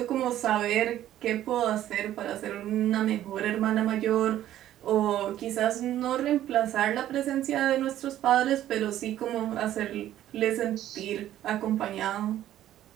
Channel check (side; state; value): left; quieter; 12.6 dB